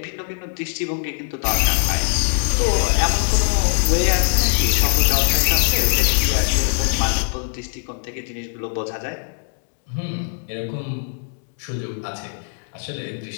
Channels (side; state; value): right; silent; digital silence